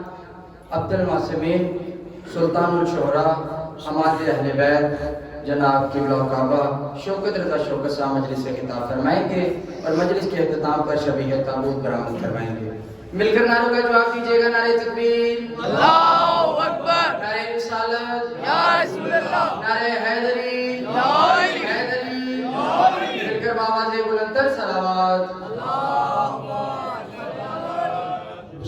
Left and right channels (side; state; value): both; identical; correlation 1.00